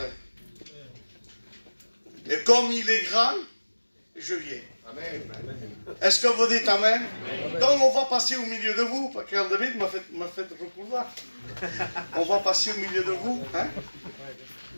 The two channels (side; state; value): both; inverted; correlation -1.00